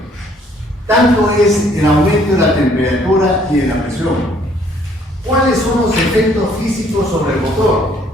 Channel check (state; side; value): normal; both; correlation 0.62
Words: tanto es el aumento de la temperatura y de la presión. ¿Cuáles son los efectos físicos sobre el motor?